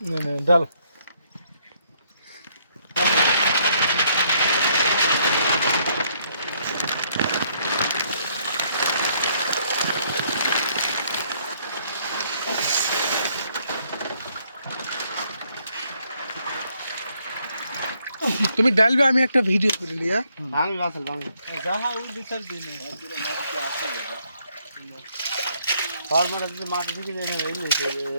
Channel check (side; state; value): both; inverted; correlation -0.70